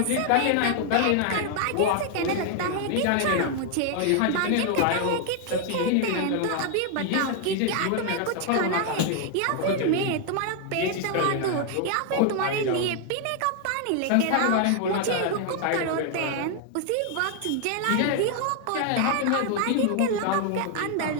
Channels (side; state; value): both; different; correlation 0.00